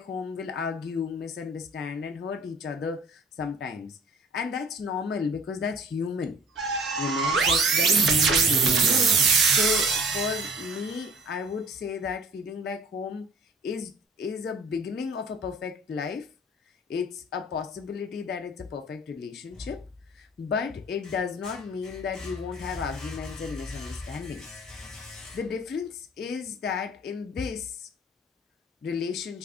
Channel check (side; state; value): both; normal; correlation 0.49